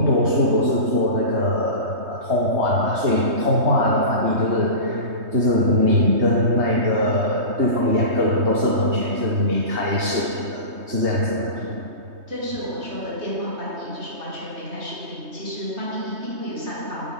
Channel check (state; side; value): late; left; 3.2 ms